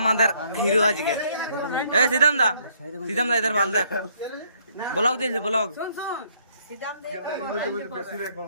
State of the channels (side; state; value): both; inverted; correlation -0.66